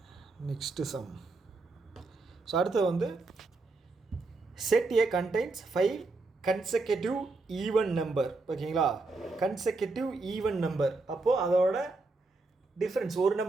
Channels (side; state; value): left; quieter; 3.5 dB